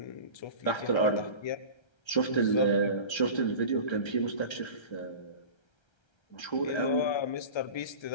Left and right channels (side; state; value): right; late; 1.3 ms